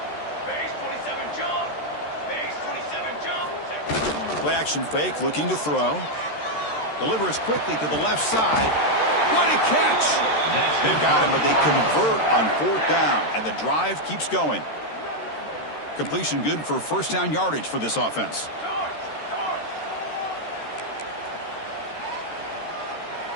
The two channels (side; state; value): right; late; 13 ms